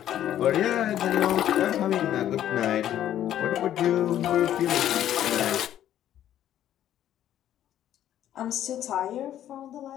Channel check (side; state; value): right; quieter; 11.5 dB